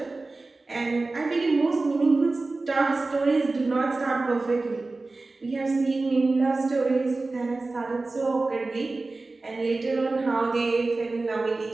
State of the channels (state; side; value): quieter; left; 3.4 dB